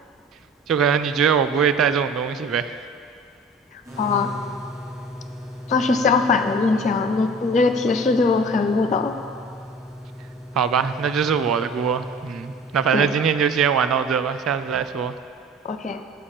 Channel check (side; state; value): both; normal; correlation 0.43